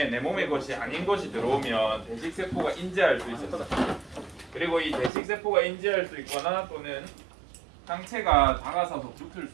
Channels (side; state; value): left; drops out; at 5.1 s